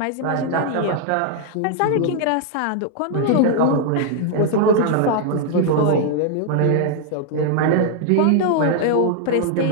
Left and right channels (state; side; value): different; both; correlation 0.00